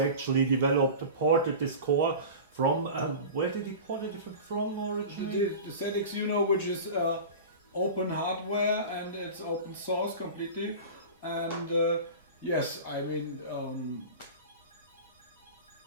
ported this core from, where did he port it from originally? The ZXuno, which is open hardware and it's open source completely. And yes, I mean,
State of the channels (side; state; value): both; inverted; correlation -0.33